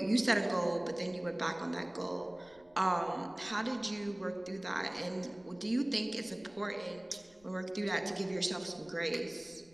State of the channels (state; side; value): noise; left; rumble, 29 dB below the sound